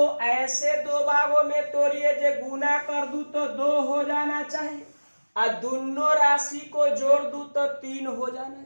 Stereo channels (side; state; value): both; inverted; correlation -1.00